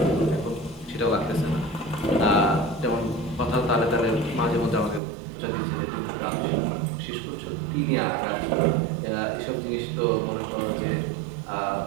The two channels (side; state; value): left; drops out; at 5.0 s